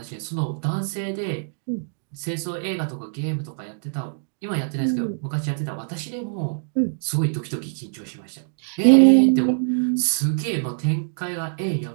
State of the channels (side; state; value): left; silent; digital silence